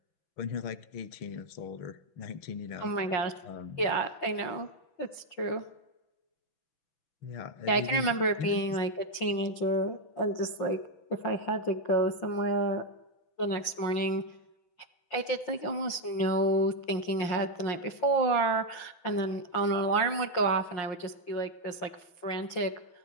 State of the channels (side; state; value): right; late; 5.6 ms